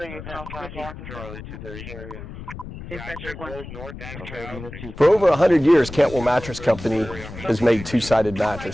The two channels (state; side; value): noise; left; rumble, 12 dB below the sound